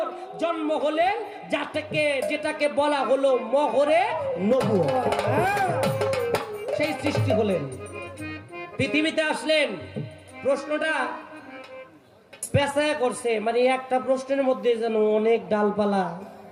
জন্ম হলেন, যেটাকে বলা হলো মোহরে নবুয়ত। সেই সৃষ্টি হলেন, পৃথিবীতে আসলেন। প্রশ্নটা পেঁচায় করছে, মানে একটা প্রশ্নের মধ্যে যেন অনেক ডালপালা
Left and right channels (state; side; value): identical; both; correlation 1.00